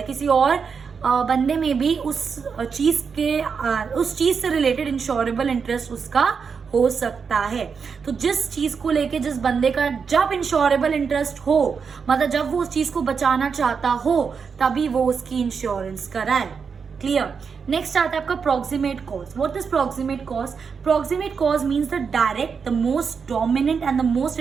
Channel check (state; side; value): quieter; left; 5.9 dB